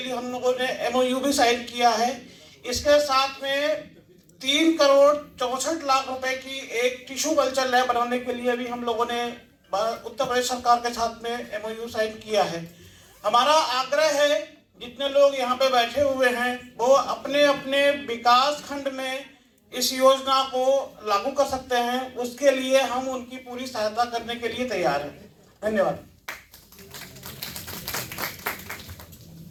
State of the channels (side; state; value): both; identical; correlation 1.00